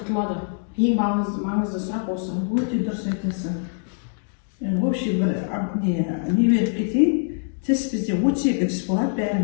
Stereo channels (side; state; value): right; silent; digital silence